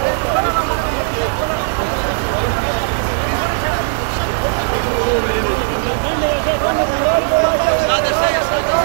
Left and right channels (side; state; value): left; silent; digital silence